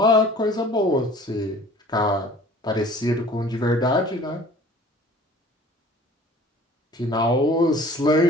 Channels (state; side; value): normal; both; correlation 0.48